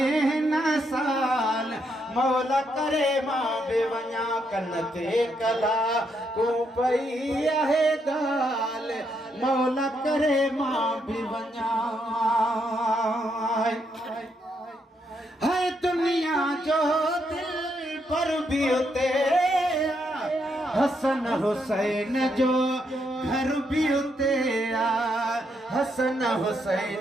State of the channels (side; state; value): both; normal; correlation 0.77